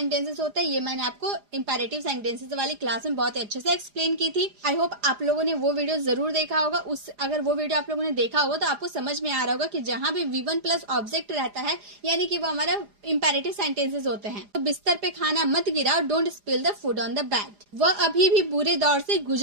होता है। ये मैंने आपको इंपेरेटिव सेंटेंसेस वाली क्लास में बहुत अच्छे से एक्सप्लेन की थी। आई होप आप लोगों ने वो वीडियो जरूर देखा होगा। अगर वो वीडियो आप लोगों ने देखा होगा तो आपको समझ में आ रहा होगा कि जहां भी V1 प्लस ऑब्जेक्ट रहता है यानी कि वो हमारा इंपेरेटिव सेंटेंसेस होते हैं। तो बिस्तर पे खाना मत गिराओ, don't spill the food on the bed. वह अभी भी बुरे दौर से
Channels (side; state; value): left; late; 4.9 ms